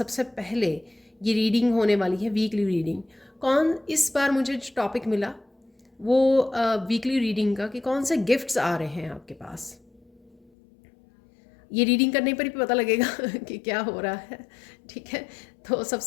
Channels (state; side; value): drops out; right; at 10.5 s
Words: पहले ये रीडिंग होने वाली है वीकली रीडिंग। इस बार मुझे जो टॉपिक मिला वो वीकली रीडिंग का कि कौन से गिफ्ट्स आ रहे हैं आपके पास। ये रीडिंग करने पर ही पता लगेगा कि क्या हो रहा है। ठीक है, तो